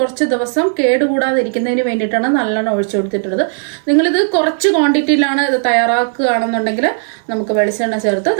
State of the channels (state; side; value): silent; left; digital silence